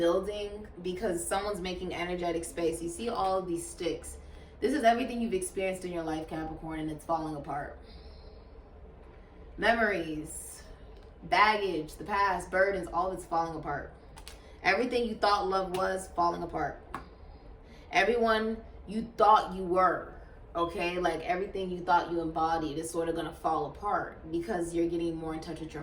because someone's making energetic space. You see all of these sticks. This is everything you've experienced in your life, Capricorn, and it's falling apart. Memories, baggage, the past, burdens, all of it's falling apart. Everything you thought love was, falling apart. Everyone you thought you were, okay? Like everything you thought you embodied is sort of going to fall apart because you're getting more in touch with your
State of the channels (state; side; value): identical; both; correlation 1.00